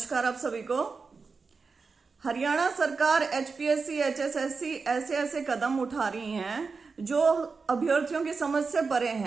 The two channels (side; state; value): left; quieter; 4.7 dB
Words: आप सभी को। हरियाणा सरकार एचपीएससी, एचएसएससी ऐसे ऐसे कदम उठा रही हैं जो अभ्यर्थियों की समझ से परे